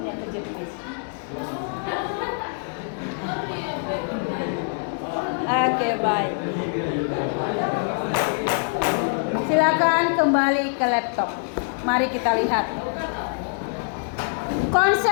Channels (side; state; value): right; silent; 62 dB below the other